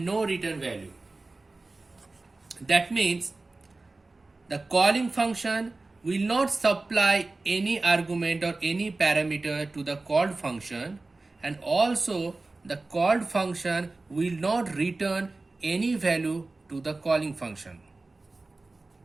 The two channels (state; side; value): quieter; left; 3.3 dB